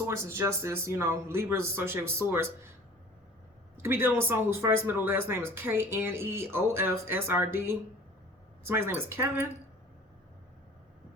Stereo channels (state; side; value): normal; both; correlation 0.46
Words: is justice. You know, Libra is associated with source. You could be dealing with someone whose first, middle, last name is K-N-E-O-F-S-R-D. Somebody's name is Kevin.